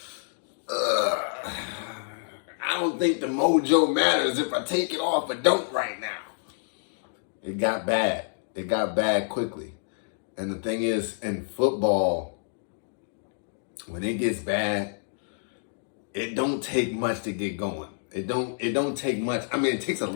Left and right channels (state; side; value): silent; right; digital silence